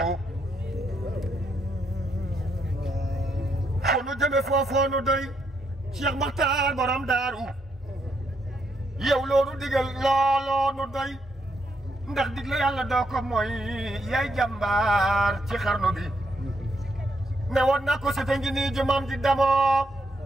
fu nu jëme foofoo nu doy Cheikh Makhtar borom daaru yow loolu digal looloo nu doy ndax digle yàlla doo ko mooy yaay jàmbaar ci xarnu bi ne woon na ko sete ngi nii jumam ji damoo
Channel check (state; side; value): normal; both; correlation 0.77